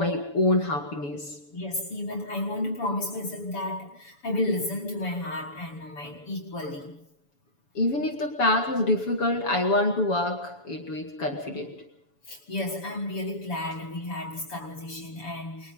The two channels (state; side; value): late; right; 7.0 ms